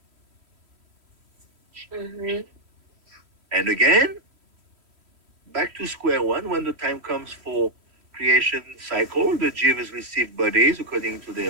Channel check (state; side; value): late; left; 3.1 ms